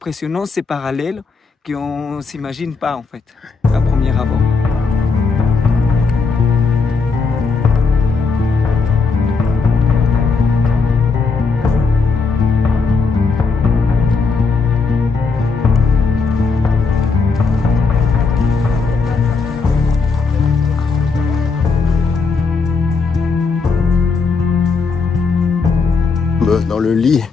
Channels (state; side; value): quieter; right; 4.6 dB